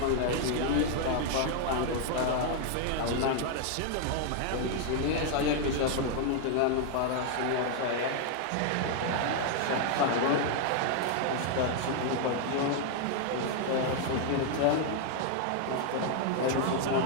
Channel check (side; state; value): both; different; correlation 0.00